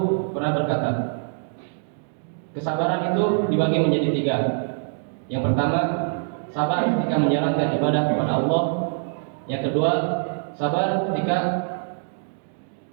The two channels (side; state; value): left; silent; 63 dB below the other